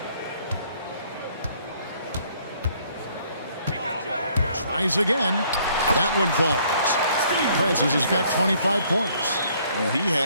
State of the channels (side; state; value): both; inverted; correlation -0.63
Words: Tries again. That one falls. Francis has got 25 points. And he